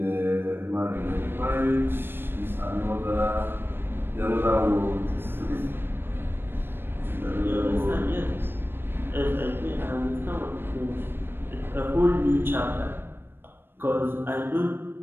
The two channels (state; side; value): late; left; 0.10 ms